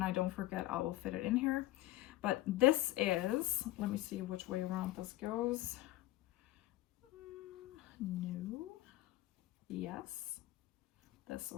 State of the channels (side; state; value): right; quieter; 16.3 dB